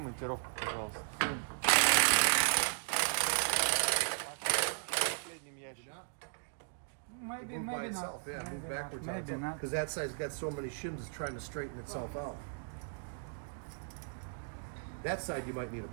пожалуйста. Maybe, Move by maybe itself, not. yeah, move Maybe backwards not. on Maybe itself. not. Because that side's got so many shims, it's trying to straighten itself out. That side you might need a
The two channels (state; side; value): silent; left; digital silence